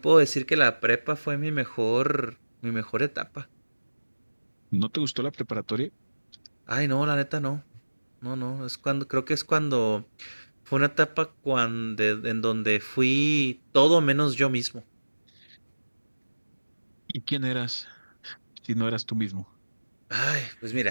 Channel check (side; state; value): both; inverted; correlation -1.00